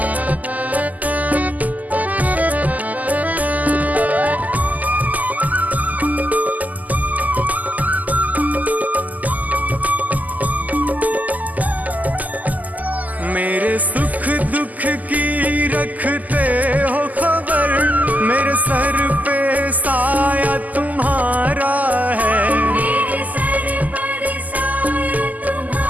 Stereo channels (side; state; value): left; late; 0.079 ms